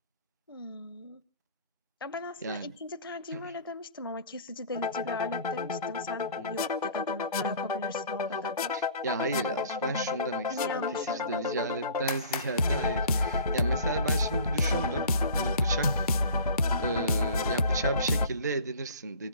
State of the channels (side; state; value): both; inverted; correlation -0.46